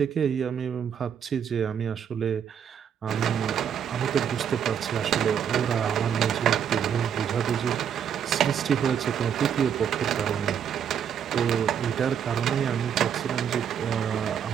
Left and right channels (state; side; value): quieter; left; 8.3 dB